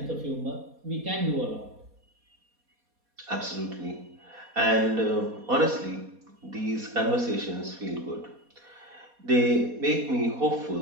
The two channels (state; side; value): late; left; 4.2 ms